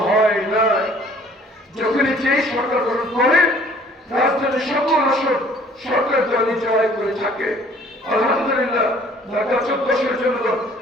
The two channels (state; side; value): normal; both; correlation 0.55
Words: হয় নাই। যখনই যেই সরকার গঠন করে রাজধানীর সকল আসন সরকার দলই জয় করে থাকে। আলহামদুলিল্লাহ ঢাকা 14 আসনের জনগণ,